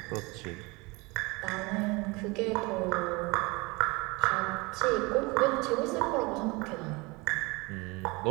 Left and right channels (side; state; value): left; quieter; 25.4 dB